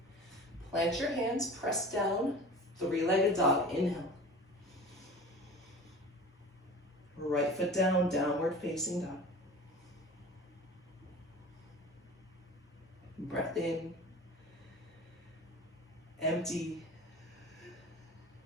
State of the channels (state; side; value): normal; both; correlation 0.38